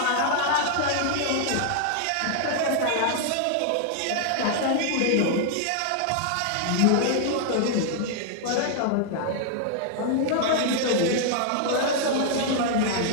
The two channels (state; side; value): different; both; correlation 0.00